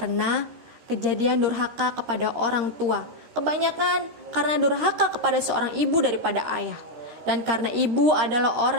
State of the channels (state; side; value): late; left; 13 ms